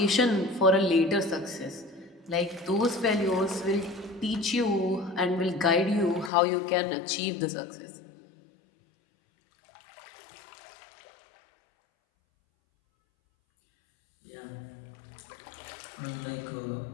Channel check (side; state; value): right; drops out; at 6.3 s